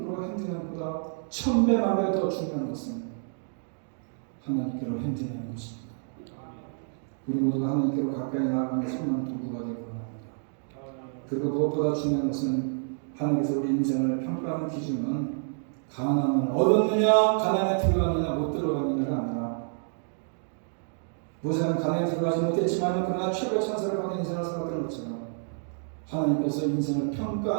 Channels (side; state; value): left; silent; digital silence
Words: 행진하는 것보다 1000배만 더 중요한 것은 하나님께로 행진하는 것입니다. 우리 모두가 하나님께로 가까이 나아가는 선한 도구가 되기 원합니다. 그리고 무엇보다 중요한 것은 하나님께서 우리 인생을 평가하는 기준은 가난을 얻었느냐, 가난에 들어갔느냐, 못 들어갔느냐가 아니라 모세는 가난에 들어가지 못했지만 그러나 최고의 찬사를 받은 인생을 살았던 것처럼 하나님께서 인생을